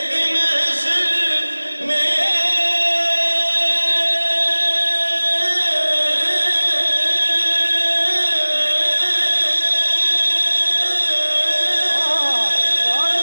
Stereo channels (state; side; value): inverted; both; correlation -1.00